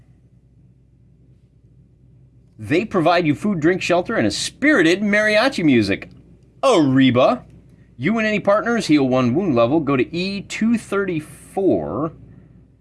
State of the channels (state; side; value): identical; both; correlation 1.00